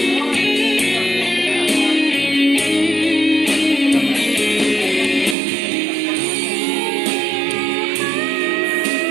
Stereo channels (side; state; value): left; drops out; at 5.4 s